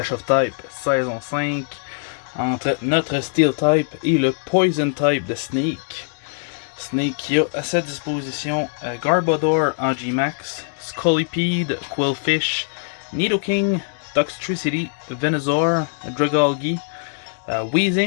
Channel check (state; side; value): silent; right; digital silence